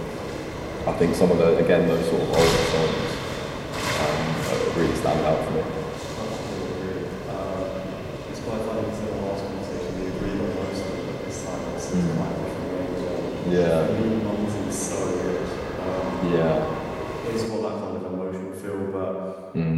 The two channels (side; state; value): both; identical; correlation 1.00